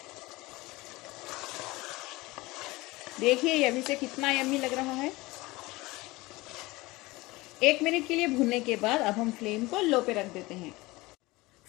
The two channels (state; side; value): quieter; right; 21.3 dB